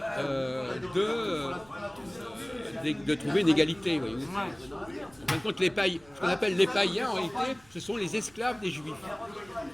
de trouver une égalité. Voyez-vous. En fin de compte, ce qu'on appelle les païens, en réalité, ce sont les esclaves des juifs.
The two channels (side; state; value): right; noise; rumble, 27 dB below the sound